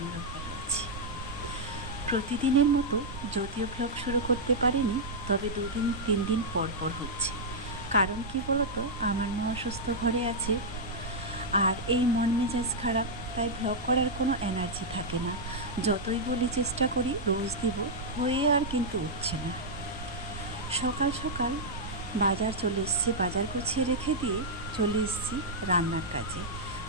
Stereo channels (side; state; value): right; noise; rumble, 10 dB below the sound